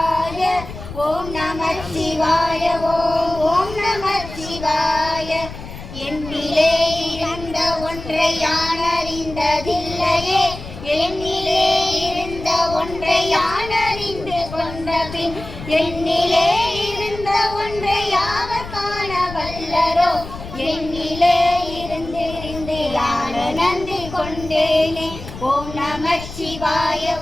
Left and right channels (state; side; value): noise; left; rumble, 12 dB below the sound